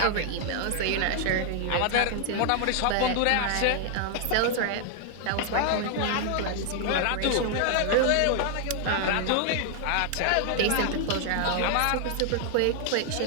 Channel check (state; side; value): different; both; correlation 0.00